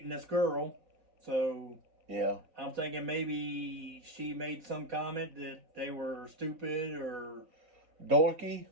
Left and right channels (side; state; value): left; late; 3.9 ms